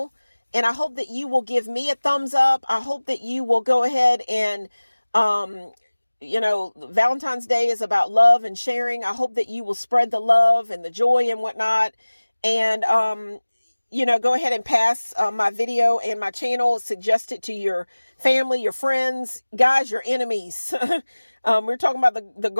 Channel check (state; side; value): inverted; both; correlation -1.00